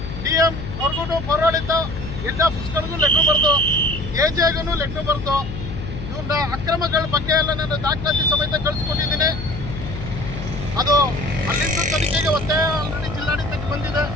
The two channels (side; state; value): left; noise; hum, 8 dB below the sound